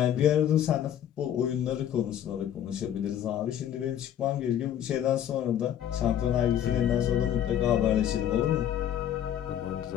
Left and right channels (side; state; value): right; quieter; 10.3 dB